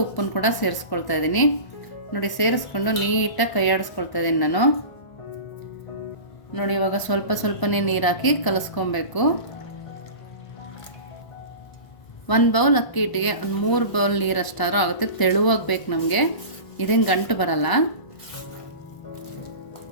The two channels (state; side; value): late; right; 1.0 ms